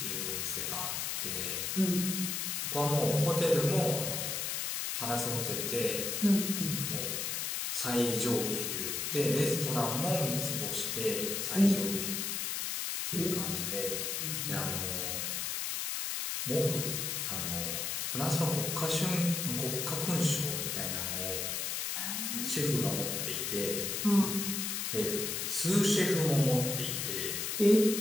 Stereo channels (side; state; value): left; noise; hiss, 1 dB below the sound